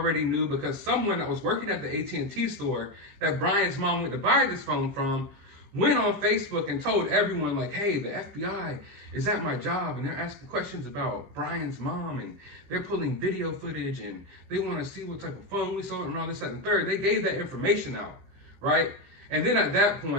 knew because someone that was working at the AT&T store that Brian's mom went to buy this phone from went on Facebook and told everyone like, hey, the FBI is at my job and they're asking questions about Brian's mom and they're pulling video footage and they want to see what type of phone we sold and all this, that, and third. They gave that information out, right? And then at that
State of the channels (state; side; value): late; left; 16 ms